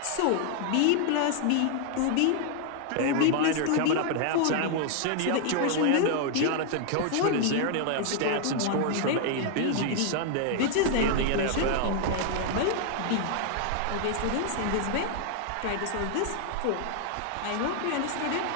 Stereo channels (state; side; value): different; both; correlation 0.00